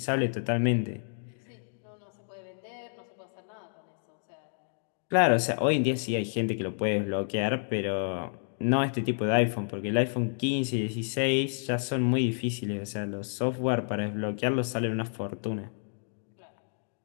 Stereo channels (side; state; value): right; silent; digital silence